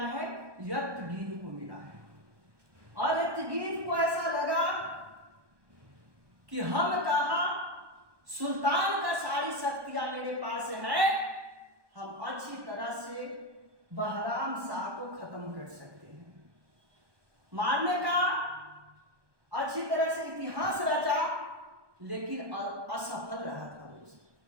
है? एतगीन को मिला है। और एतगीन को ऐसा लगा कि हम कहा सुल्तान का सारी शक्तियां मेरे पास है, हम अच्छी तरह से बहराम शाह को खत्म कर सकते हैं। मारने का अच्छी तरह से इतिहास रचा, लेकिन असफल रहा था दोस्त।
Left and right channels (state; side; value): late; left; 1.2 ms